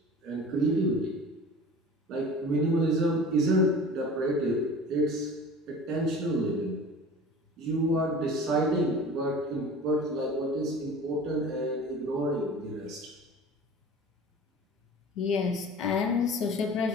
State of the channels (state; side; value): normal; both; correlation 0.40